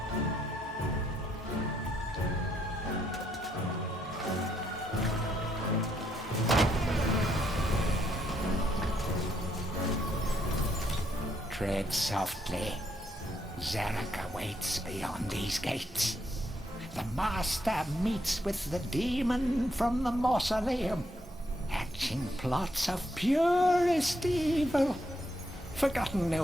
Tread softly. Zarek awaits beyond these gates. The Master meets with the demon from the mausoleum, hatching plots of purest evil. Forgotten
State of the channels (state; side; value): normal; both; correlation 0.75